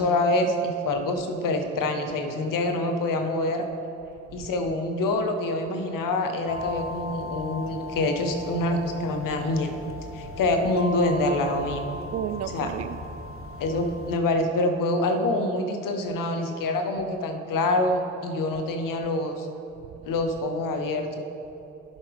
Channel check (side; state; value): both; normal; correlation 0.15